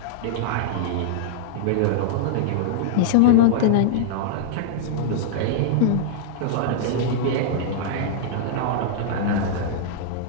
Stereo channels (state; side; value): different; both; correlation -0.02